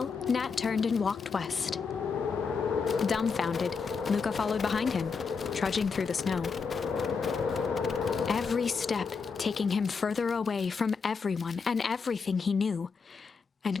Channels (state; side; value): quieter; right; 5.3 dB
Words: Nat turned and walked west. Dumbfounded, Luca followed behind him, trudging through the snow. Every step taking him further away from everyone and everything he knew,